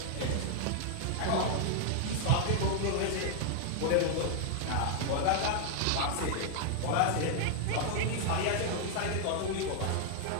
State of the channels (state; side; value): different; both; correlation 0.00